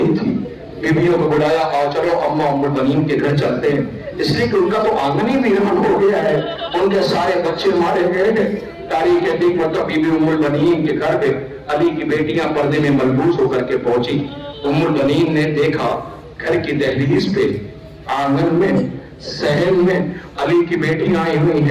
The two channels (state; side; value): identical; both; correlation 1.00